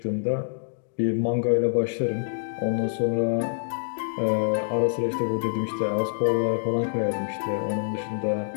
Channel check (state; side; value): silent; right; digital silence